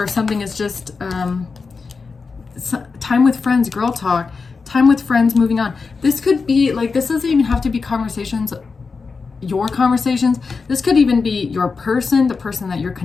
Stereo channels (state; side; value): quieter; right; 4.7 dB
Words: if something is just time with friends, girl talk, time with friends, moving on. This could be like, this doesn't even have to be conversations, your conversations. This could even be your person, the person that you're